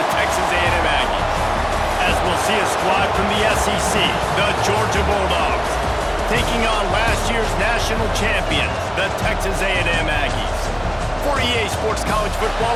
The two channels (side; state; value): both; identical; correlation 1.00